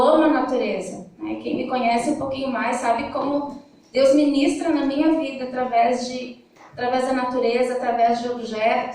amo a natureza. Né? Quem me conhece um pouquinho mais sabe como Deus ministra na minha vida através da natureza, através de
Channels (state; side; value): identical; both; correlation 1.00